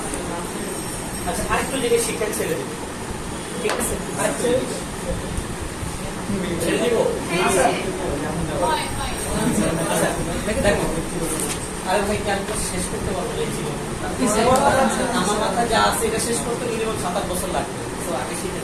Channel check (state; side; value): identical; both; correlation 1.00